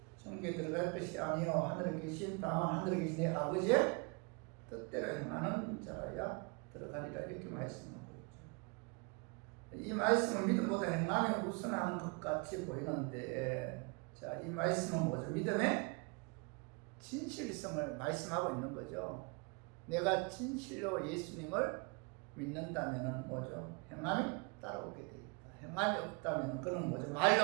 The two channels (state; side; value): quieter; left; 31.5 dB